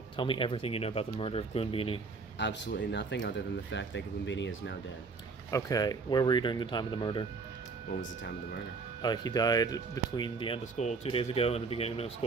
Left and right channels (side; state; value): left; quieter; 4.4 dB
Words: tell me everything you know about the murder of Gloonbini. Absolutely nothing other than the fact that Gloonbini is now dead. Okay, where were you during the time of the murder? When was the time of the murder? He died between the end of school 2 days ago and the beginning of